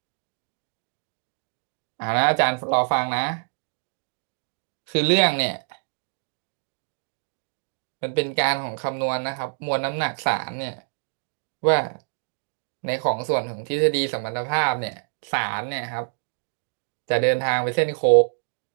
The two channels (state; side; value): silent; left; digital silence